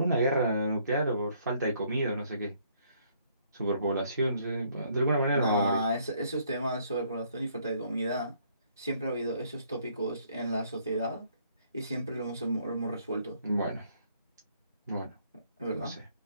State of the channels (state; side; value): inverted; both; correlation -0.66